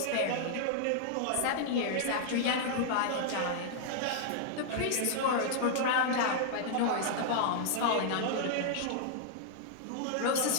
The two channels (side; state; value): both; different; correlation -0.01